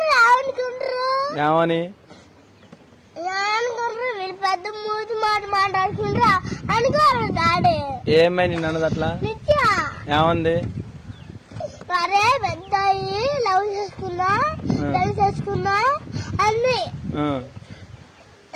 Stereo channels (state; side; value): identical; both; correlation 1.00